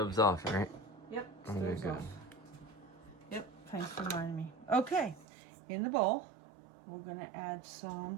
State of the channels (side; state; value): left; drops out; at 5.2 s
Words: off, right? Yep, Okay, stove's good. off. Yep, thanks for reminding me. Okay, in the bowl, we're gonna add